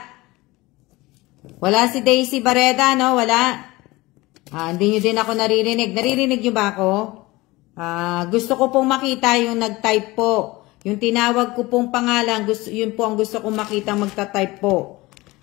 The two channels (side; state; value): right; quieter; 20.9 dB